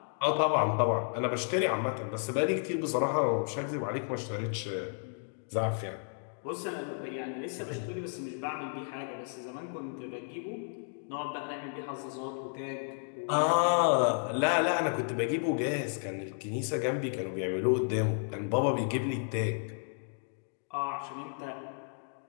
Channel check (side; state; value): right; silent; 56 dB below the other